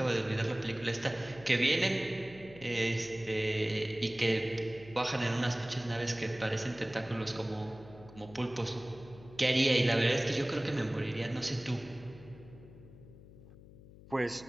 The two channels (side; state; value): left; noise; hum, 19 dB below the sound